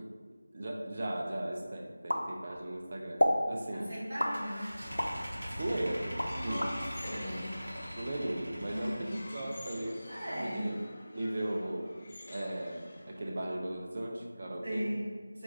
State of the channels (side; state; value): both; inverted; correlation -0.97